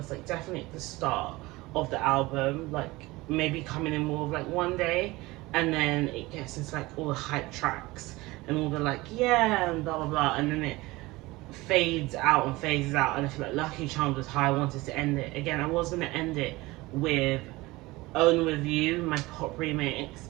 like definitely at the start of the album, like maybe coming in more of like one day, and then it gets into like all the hype tracks and all the like, yeah, and blah blah blah, and then it fades out and phases out, and I feel like Lucky Charms was how I wanted to end it. Again, I was going to end it with Own With You, my pop remix,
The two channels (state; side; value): quieter; left; 20.8 dB